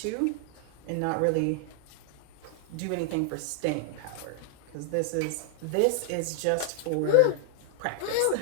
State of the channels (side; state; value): both; different; correlation 0.00